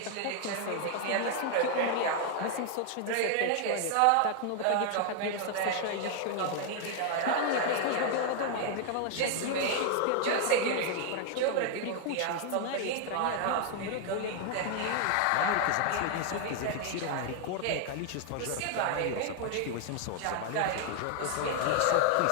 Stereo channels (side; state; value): both; different; correlation 0.00